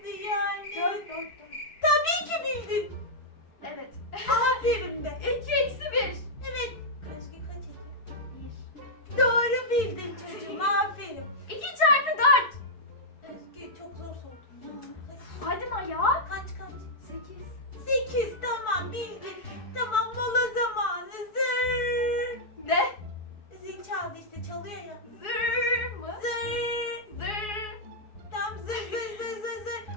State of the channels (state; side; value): late; right; 4.7 ms